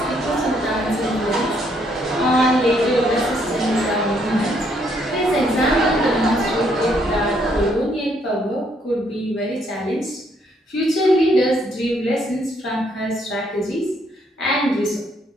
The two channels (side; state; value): both; normal; correlation 0.71